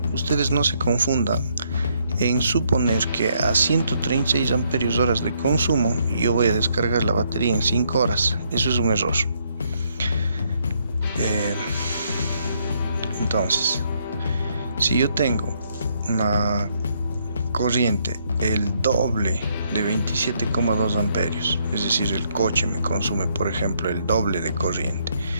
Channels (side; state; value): both; inverted; correlation -0.73